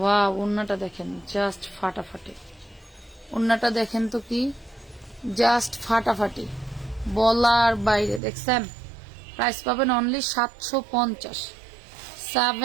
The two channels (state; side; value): drops out; left; at 8.2 s